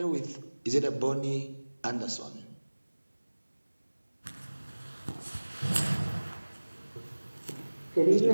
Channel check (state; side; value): inverted; both; correlation -1.00